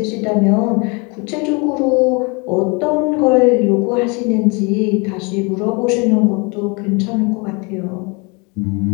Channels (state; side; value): quieter; right; 30.5 dB